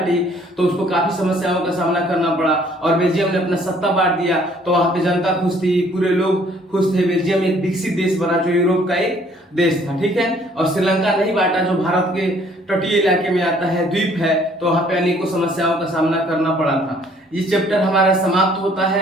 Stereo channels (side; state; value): both; normal; correlation 0.60